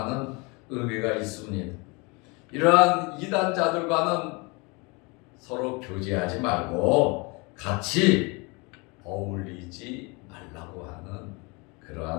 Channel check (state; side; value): quieter; right; 28.5 dB